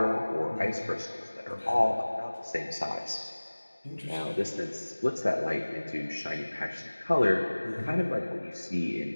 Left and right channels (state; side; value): inverted; both; correlation -1.00